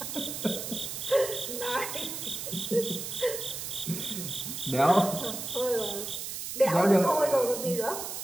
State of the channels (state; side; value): noise; right; hiss, 6 dB below the sound